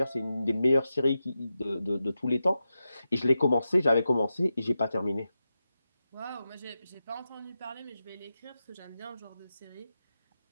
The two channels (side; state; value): both; inverted; correlation -0.91